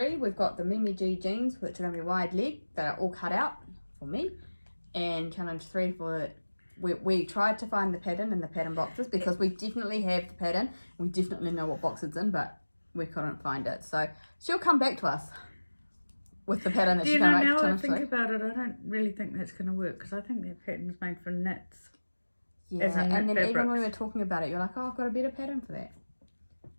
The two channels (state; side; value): inverted; both; correlation -1.00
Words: we've got the Mimi G jeans, which are going to be wide leg, that are all cut out for me. And challenge 3 we tried to find the pattern in the pattern boxes because we definitely have the pattern. We definitely know what box it's in, but we couldn't find it. So she'll come back to us with the pattern that she's going to make. Now I think about it, I don't really think that's going to work because I think that pattern's made for knits. Yeah, and then even when we were talking about it, you're like, oh, I've got a better pattern for that.